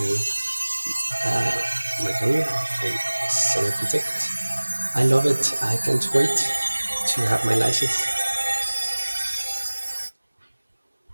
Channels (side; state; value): both; inverted; correlation -1.00